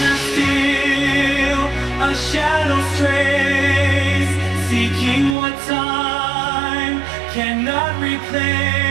still, a shadow strays, seeking what time cannot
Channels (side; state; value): left; drops out; at 5.4 s